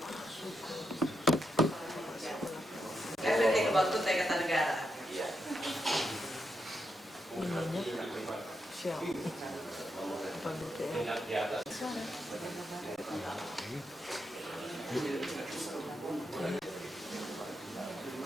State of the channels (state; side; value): normal; both; correlation 0.83